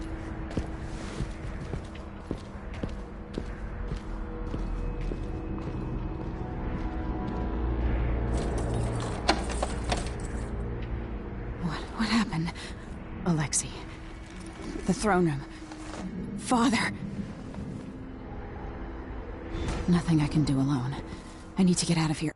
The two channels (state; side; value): identical; both; correlation 1.00